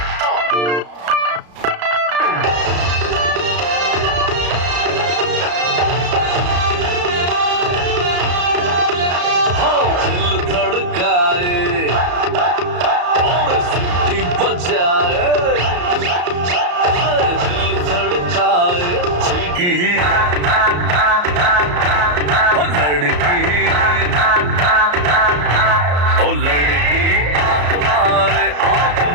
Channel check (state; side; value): late; left; 34 ms